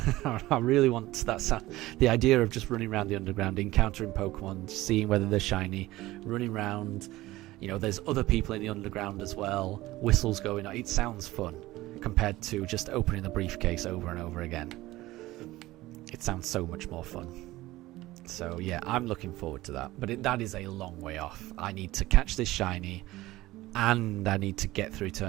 I really want the idea of just running around the underground, encountering Pokemon, seeing whether they're shiny, running around. There's other people in the underground as well, whistles going on. It sounds fun compared to just opening the briefcase over and over again. It sounds so much more fun. So yeah, I'm looking forward to that. But that is a long way off. I need to catch this shiny, and I need to get through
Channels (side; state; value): left; quieter; 17.6 dB